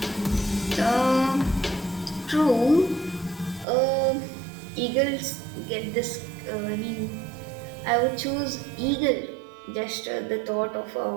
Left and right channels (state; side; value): drops out; left; at 3.7 s